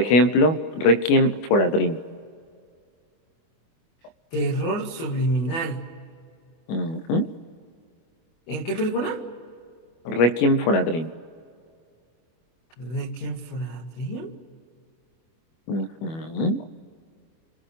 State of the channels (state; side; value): late; right; 25 ms